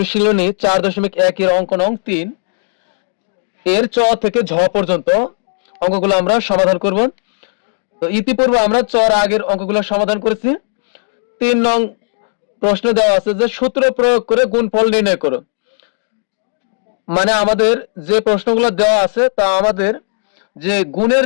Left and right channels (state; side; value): silent; right; digital silence